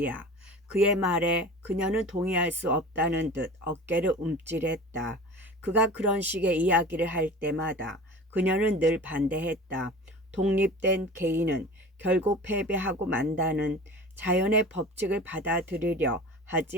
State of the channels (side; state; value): both; normal; correlation 0.38